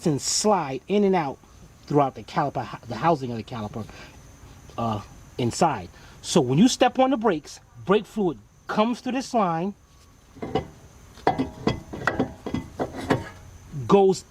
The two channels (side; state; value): both; identical; correlation 1.00